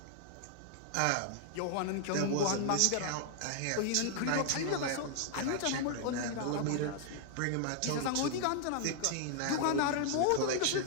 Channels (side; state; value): both; different; correlation 0.00